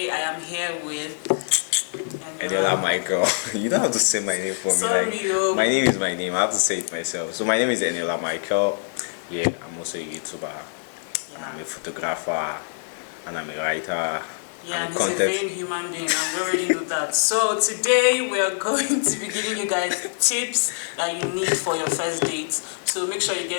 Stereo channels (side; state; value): right; silent; 57 dB below the other